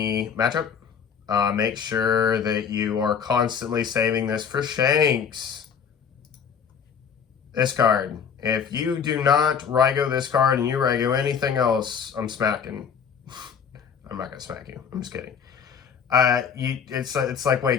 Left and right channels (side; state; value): right; quieter; 7.0 dB